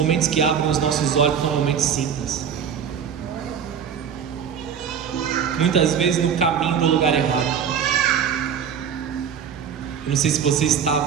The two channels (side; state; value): left; quieter; 7.7 dB